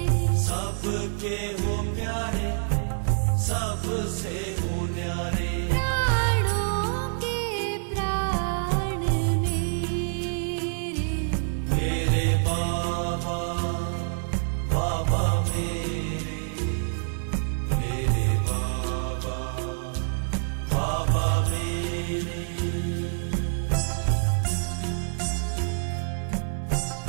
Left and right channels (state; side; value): silent; left; 57 dB below the other